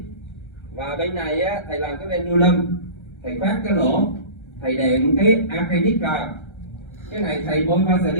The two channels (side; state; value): right; late; 1.3 ms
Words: Và bên này á, thầy làm cái pendulum, thầy khoét cái lỗ, thầy đệm cái acrylic vào. Cái này thầy bôi